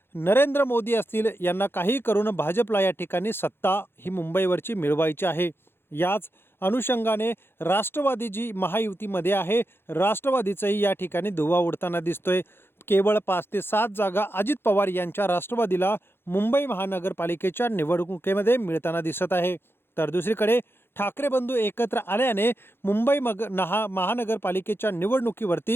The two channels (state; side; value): late; right; 0.11 ms